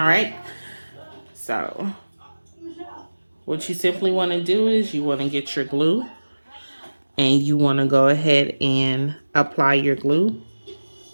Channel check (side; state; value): both; inverted; correlation -1.00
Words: right. So, what you simply want to do is you want to get your glue, and you want to go ahead and apply your glue.